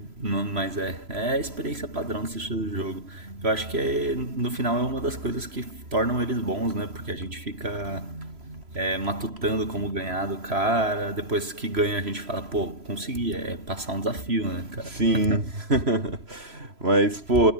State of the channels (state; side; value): late; left; 3.0 ms